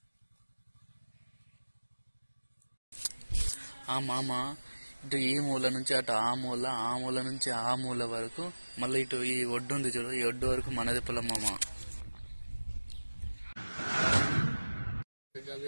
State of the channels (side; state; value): both; inverted; correlation -1.00